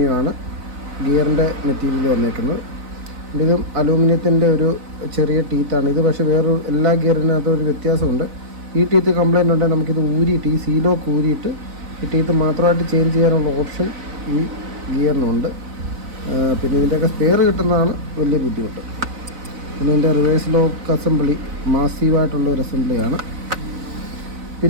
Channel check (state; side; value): late; left; 4.0 ms